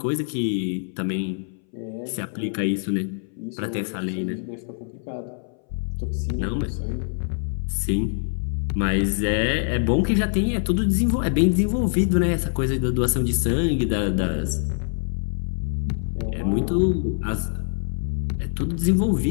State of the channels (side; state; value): right; silent; 60 dB below the other